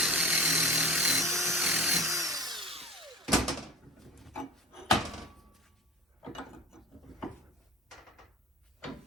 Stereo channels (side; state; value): both; normal; correlation 0.36